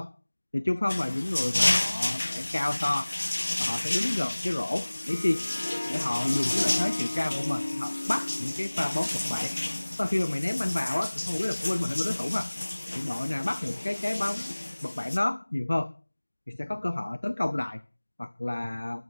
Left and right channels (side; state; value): both; inverted; correlation -1.00